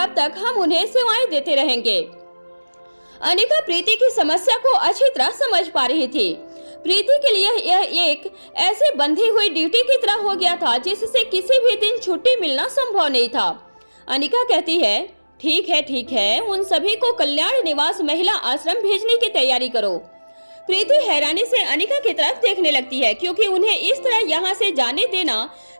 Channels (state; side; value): inverted; both; correlation -1.00